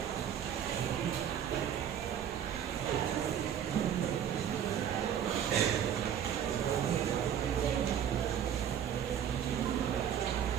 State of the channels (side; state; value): left; quieter; 9.3 dB